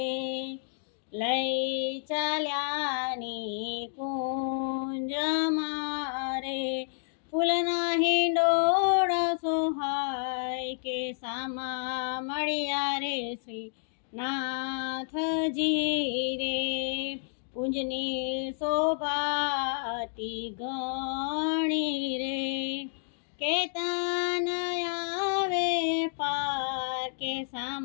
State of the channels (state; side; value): silent; right; digital silence